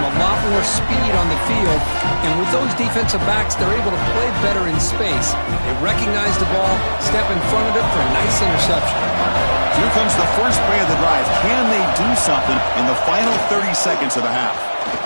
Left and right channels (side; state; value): both; inverted; correlation -1.00